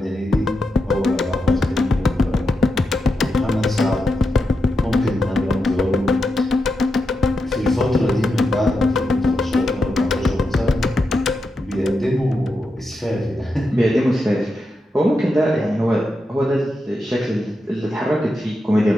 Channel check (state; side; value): normal; both; correlation 0.87